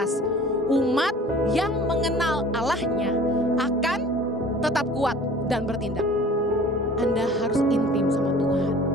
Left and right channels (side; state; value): both; normal; correlation 0.46